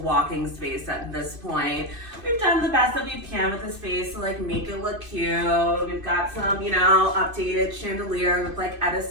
space at this point. We've done the best that we can with the space to like make it look cute. We've got some, updated chandelier with like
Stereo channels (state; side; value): late; left; 2.5 ms